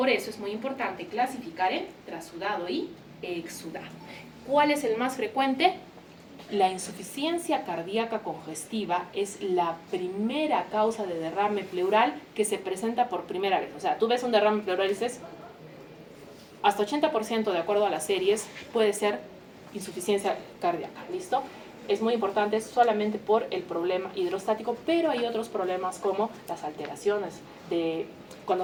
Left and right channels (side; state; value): both; identical; correlation 1.00